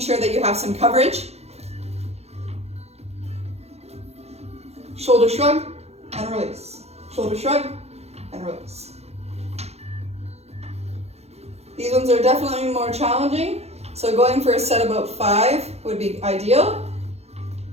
that you have some coverage. Shoulder shrug and release. Shoulder shrug and release. These ones are definitely more challenging, so going for a set about 5 would be ideal.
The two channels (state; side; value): late; left; 0.31 ms